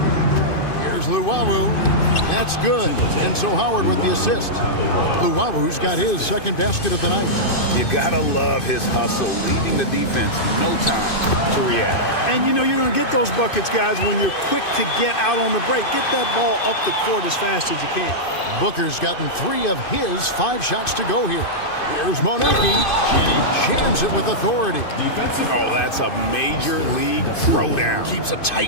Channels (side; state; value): right; late; 2.5 ms